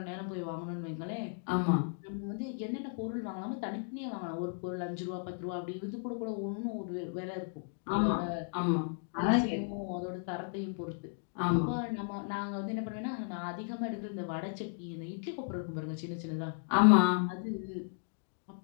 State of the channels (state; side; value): silent; right; digital silence